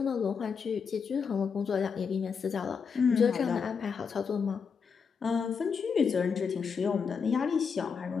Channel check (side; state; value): right; quieter; 6.0 dB